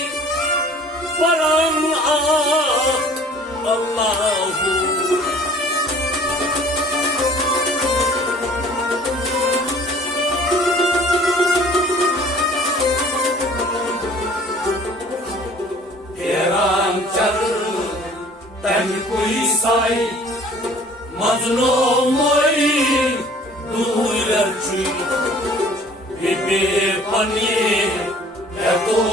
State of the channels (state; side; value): normal; both; correlation 0.51